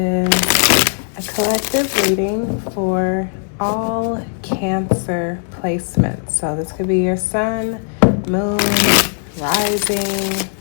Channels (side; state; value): right; silent; digital silence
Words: a collective reading for all Cancer placements. So this could be your sun, moon, rising,